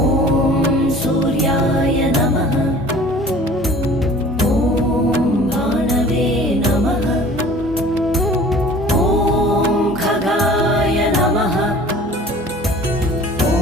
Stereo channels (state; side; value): normal; both; correlation 0.46